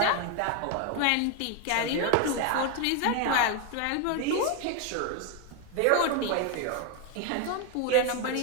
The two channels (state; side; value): different; both; correlation 0.01